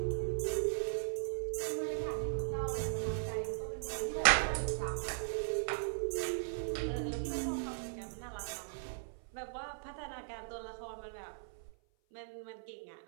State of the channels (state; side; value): silent; left; 52 dB below the other